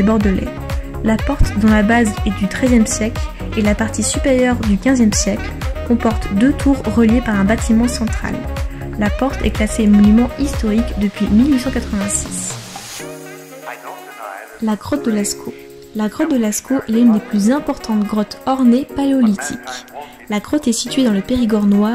Bordelais. La porte, dont la base est du XIIIe siècle et la partie supérieure du XVe siècle, comporte 2 tours reliées par un bâtiment central. La porte est classée monument historique depuis 1886. La grotte de Lascaux. La grotte de Lascaux est l'une des plus importantes grottes ornées paléolithiques. La grotte est située dans le Périgord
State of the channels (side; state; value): both; identical; correlation 1.00